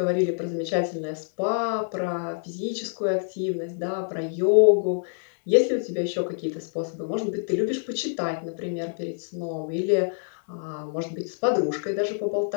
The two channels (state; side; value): silent; right; digital silence